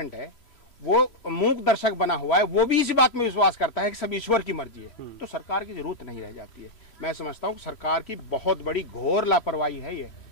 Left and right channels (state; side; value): late; right; 3.1 ms